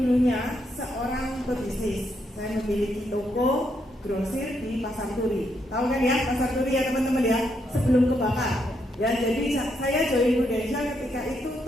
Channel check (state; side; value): normal; both; correlation 0.78